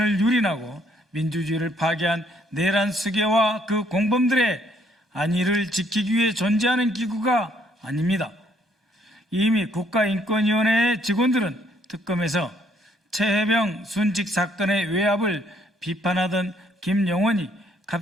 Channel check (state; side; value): normal; both; correlation 0.67